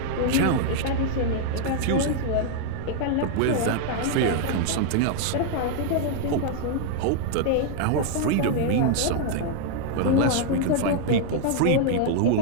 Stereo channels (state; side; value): different; both; correlation 0.00